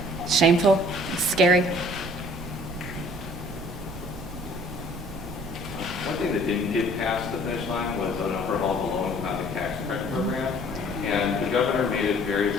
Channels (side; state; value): right; noise; rumble, 14 dB below the sound